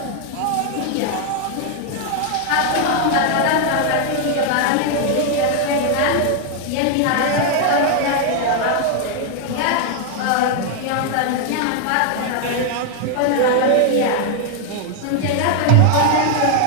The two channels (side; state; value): both; different; correlation 0.00